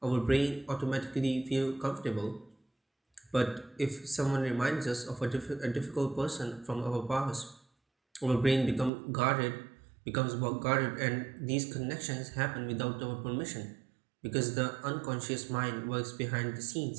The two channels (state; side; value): drops out; left; at 8.9 s